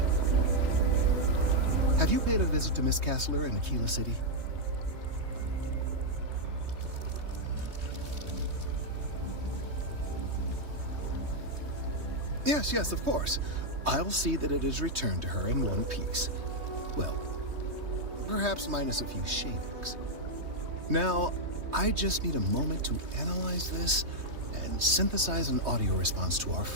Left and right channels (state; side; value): late; left; 3.2 ms